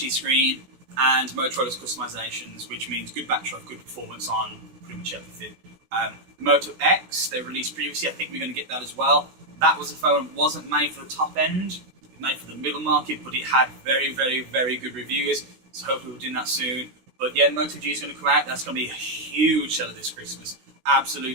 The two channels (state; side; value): late; left; 16 ms